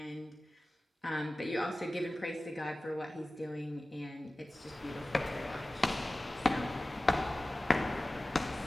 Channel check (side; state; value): both; normal; correlation 0.97